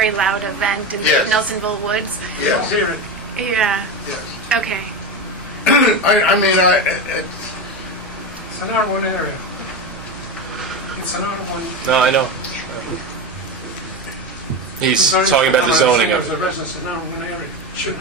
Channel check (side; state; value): both; normal; correlation 0.19